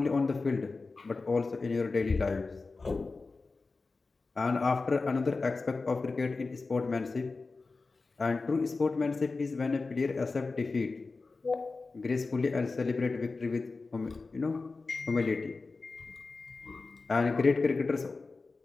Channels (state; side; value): quieter; right; 3.9 dB